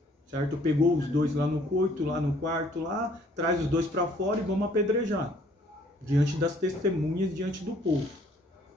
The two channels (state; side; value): normal; both; correlation 0.61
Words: certo? Pegou os dois lá no coito, lá no quarto, lá, traz os dois para fora e vamos apedrejar, diante das testemunhas, diante do povo.